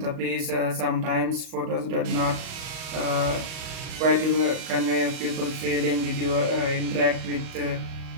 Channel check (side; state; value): left; late; 38 ms